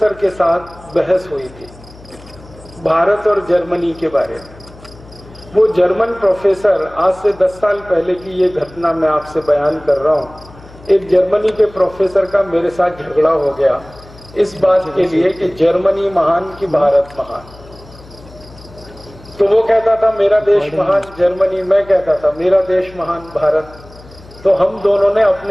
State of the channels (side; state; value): left; noise; hum, 21 dB below the sound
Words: के साथ बहस हुई थी भारत और जर्मनी के बारे में। वो जर्मन प्रोफेसर, आज से 10 साल पहले की ये घटना मैं आपसे बयान कर रहा हूँ। एक जर्मनी के प्रोफेसर का मेरे साथ झगड़ा हो गया इस बात के लिए कि जर्मनी महान कि भारत महान। तो वो कहता था मेरा देश महान जर्मनी, मैं कहता था मेरा देश महान भारत। तो हम दोनों ने